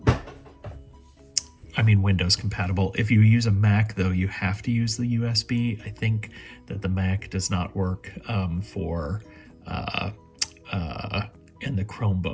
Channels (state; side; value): identical; both; correlation 1.00